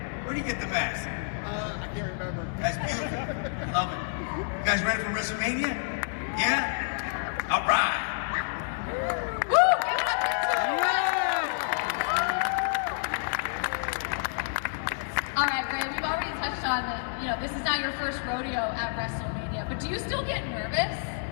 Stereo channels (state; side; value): silent; right; 59 dB below the other